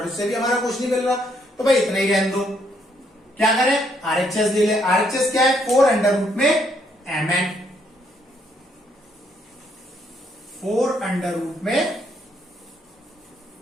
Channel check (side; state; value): both; normal; correlation 0.71